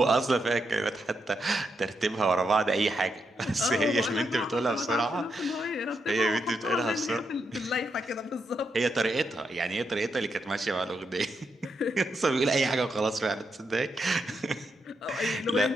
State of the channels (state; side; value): normal; both; correlation 0.82